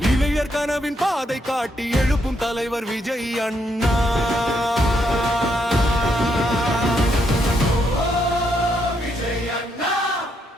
இளையர் கனவின் பாதை காட்டி எழுப்பும் தலைவர் விஜய் அண்ணா.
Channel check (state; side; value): normal; both; correlation 0.76